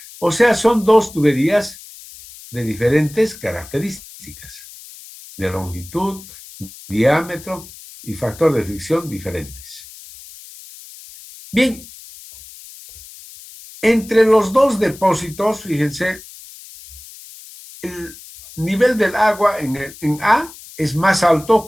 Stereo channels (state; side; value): noise; left; hiss, 18 dB below the sound